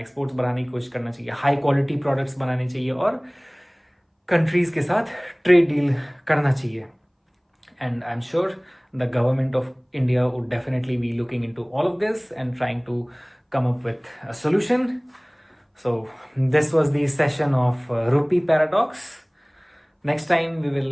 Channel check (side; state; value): both; identical; correlation 1.00